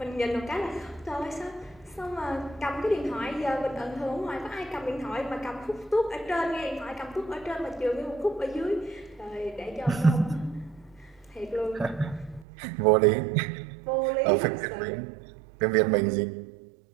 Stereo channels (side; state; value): left; drops out; at 12.5 s